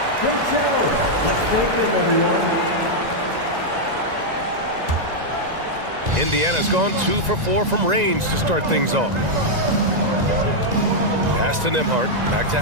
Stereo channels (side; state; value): left; late; 1.9 ms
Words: Great show. Let's thank them, everyone. Indiana's gone 2 for 4 from range to start things off. Pass to Nembhard. Back to